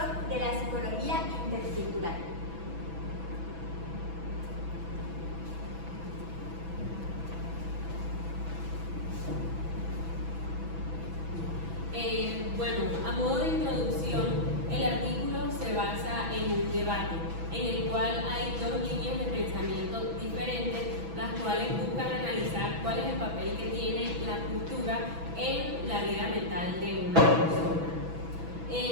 de la psicología intercultural. Bueno, a modo de introducción, el artículo se basa en un debate en el cual hay dos líneas de pensamiento diferentes, las cuales buscan analizar cuál es el papel que tiene la cultura en la vida mental de una persona.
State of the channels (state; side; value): late; left; 6.1 ms